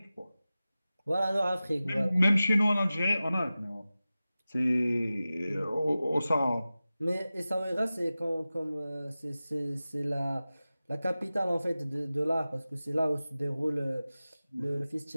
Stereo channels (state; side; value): inverted; both; correlation -0.96